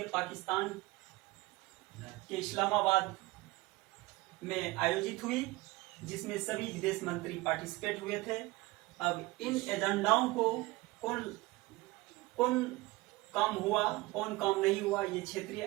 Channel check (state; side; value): quieter; left; 21.5 dB